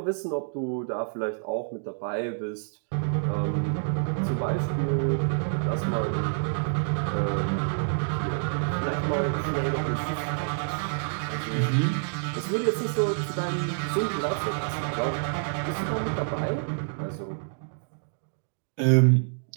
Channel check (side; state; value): left; silent; digital silence